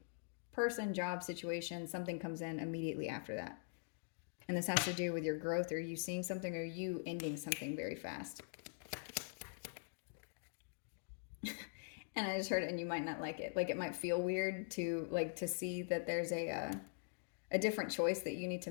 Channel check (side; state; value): right; silent; digital silence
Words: person, job, situation, something comes in immediately after that. And this has to do with your growth, or you seeing something, or you ending something very fast. And I just heard it, and you might not like it. Like, it might feel weird to see that there's a different choice that you need to